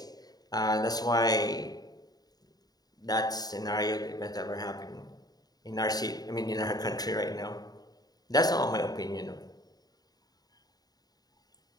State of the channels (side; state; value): right; late; 0.19 ms